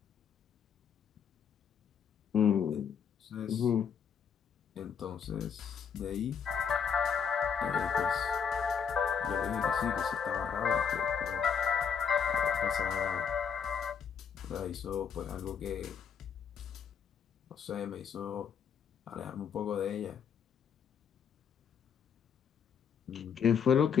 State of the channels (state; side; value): quieter; right; 7.0 dB